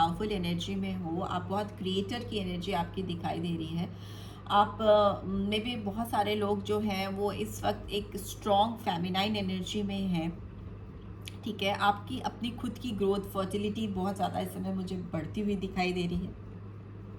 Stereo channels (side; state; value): both; identical; correlation 1.00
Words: एनर्जी में हो, आप बहुत क्रिएटर की एनर्जी आपकी दिखाई दे रही है। आप में भी बहुत सारे लोग जो हैं वो इस वक्त एक स्ट्रॉन्ग फेमिनाइन एनर्जी में हैं, ठीक है। आपकी अपनी खुद की ग्रोथ, फर्टिलिटी बहुत ज़्यादा इस समय मुझे बढ़ती हुई दिखाई दे रही है।